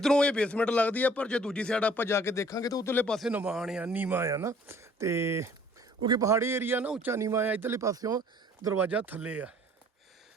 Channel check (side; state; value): both; normal; correlation 0.55